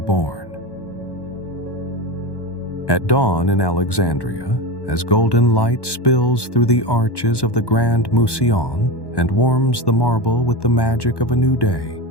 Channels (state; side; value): late; right; 1.1 ms